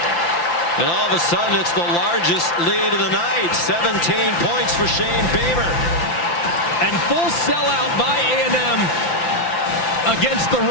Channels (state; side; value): late; right; 5.9 ms